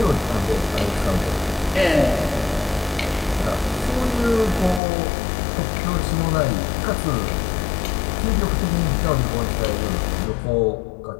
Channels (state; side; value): drops out; right; at 4.8 s